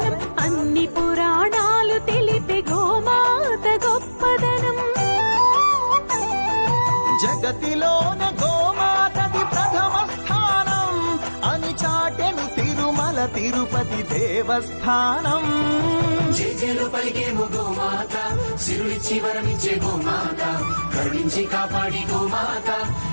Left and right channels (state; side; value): inverted; both; correlation -1.00